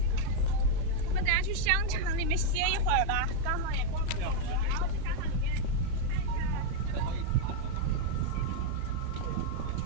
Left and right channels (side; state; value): both; different; correlation 0.00